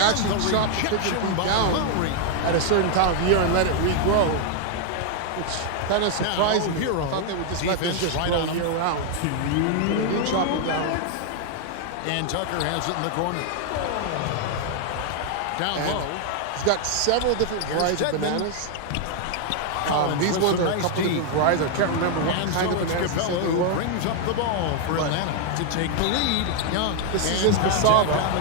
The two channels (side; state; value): both; different; correlation 0.00